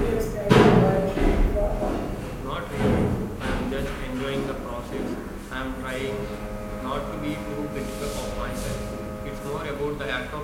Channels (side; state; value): both; identical; correlation 1.00